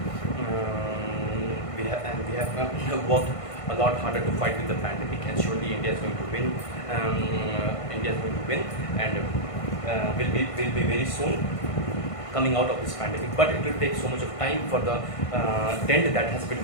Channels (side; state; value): right; late; 1.5 ms